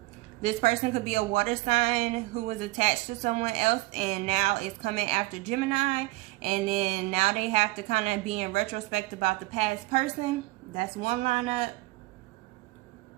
This person could be a water sign who was attached to someone else and now is coming after Gemini. And then now they have to kind of be in retrospect about the past person. That's one lineup.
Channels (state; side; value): quieter; left; 21.6 dB